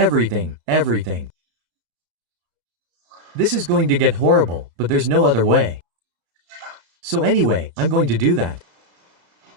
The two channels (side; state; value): left; late; 34 ms